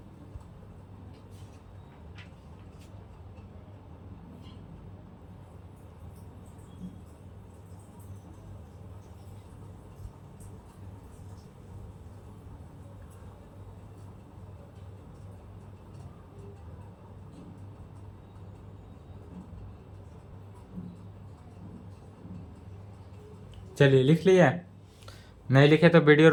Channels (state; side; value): identical; both; correlation 1.00